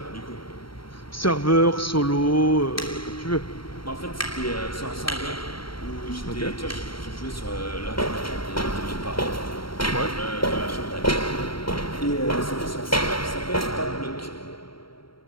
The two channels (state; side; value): late; right; 0.74 ms